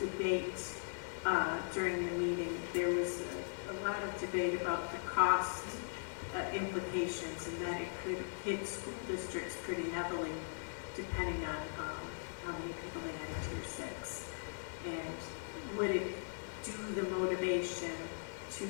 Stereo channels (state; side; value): silent; right; digital silence